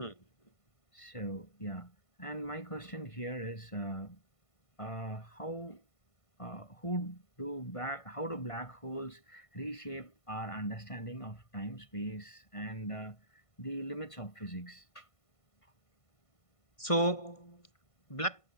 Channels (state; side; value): late; right; 1.5 ms